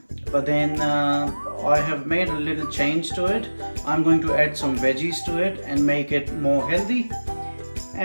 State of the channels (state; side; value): inverted; both; correlation -1.00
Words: but then I have made a little change to it. I'm going to add some veggies to it and make it more healthy,